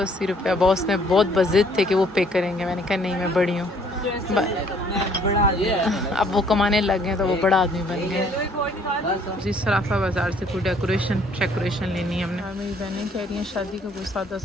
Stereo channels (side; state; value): both; normal; correlation 0.61